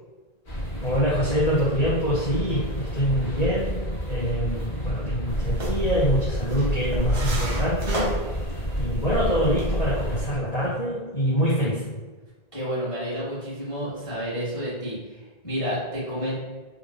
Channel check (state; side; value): late; right; 1.9 ms